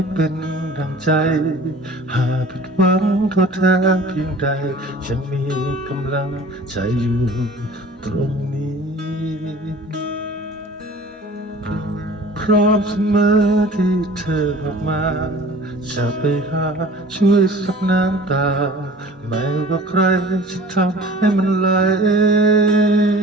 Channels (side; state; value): both; normal; correlation 0.45